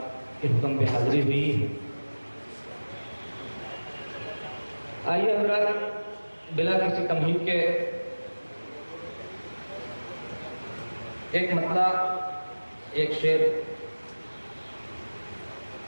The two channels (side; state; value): both; inverted; correlation -1.00